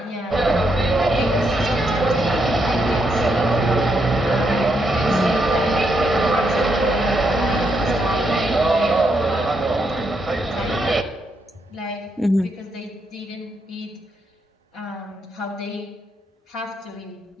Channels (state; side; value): normal; both; correlation 0.79